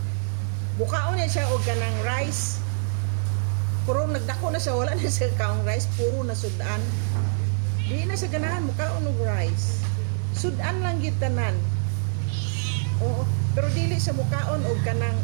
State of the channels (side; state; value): left; silent; digital silence